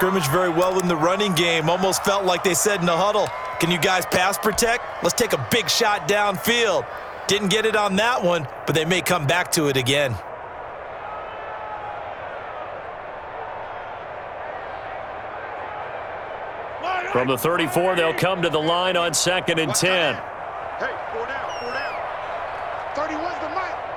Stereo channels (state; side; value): identical; both; correlation 1.00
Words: very well in the running game. Almost felt like they said in the huddle, can you guys pass protect? Let's take a big shot downfield. Didn't get it on that one, but they may come back to it again. From the 34, they'll come to the line on 2nd and 10. Hey, 4 down, 4 down. 31's the mic.